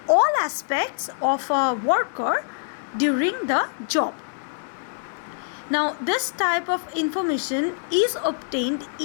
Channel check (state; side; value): silent; right; digital silence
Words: all aspects of a worker during the job. Now, this type of information is obtained